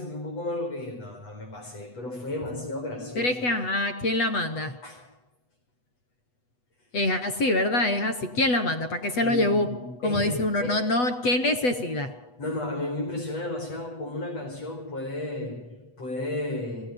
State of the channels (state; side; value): late; right; 8.1 ms